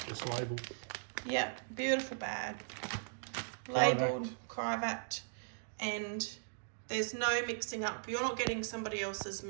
just labelled. Yep, beautiful bag. Labelled, Crivat, and there's no mixing up. You're not getting somebody else's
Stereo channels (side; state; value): left; silent; digital silence